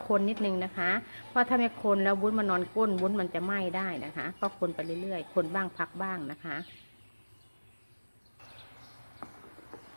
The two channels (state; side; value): inverted; both; correlation -1.00